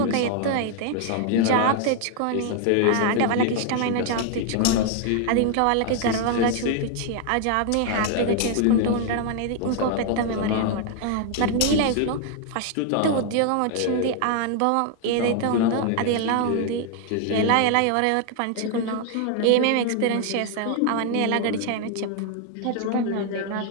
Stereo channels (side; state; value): both; different; correlation 0.00